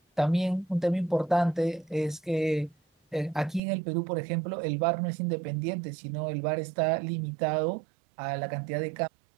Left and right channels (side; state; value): left; drops out; at 3.6 s